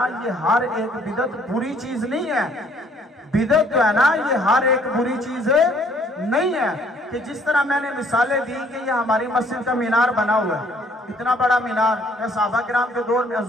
یہ ہر ایک بدعت بری چیز نہیں ہے۔ بدعت جو ہے نا یہ ہر ایک بری چیز نہیں ہے۔ کہ جس طرح میں نے مثالیں دی کہ یہ ہماری مسجد کا مینار بنا ہوا ہے، اتنا بڑا مینار کیا صحابہ کرام کے دور میں،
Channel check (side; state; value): both; normal; correlation 0.62